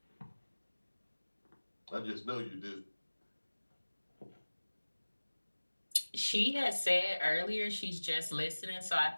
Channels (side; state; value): both; inverted; correlation -1.00